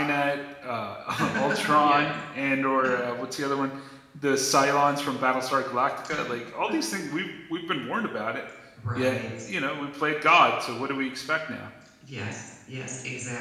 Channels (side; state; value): both; identical; correlation 1.00